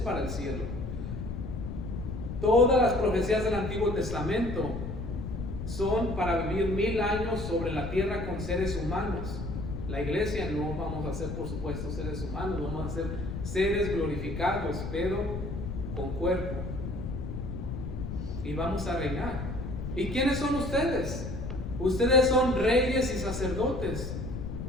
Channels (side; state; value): left; noise; rumble, 6 dB below the sound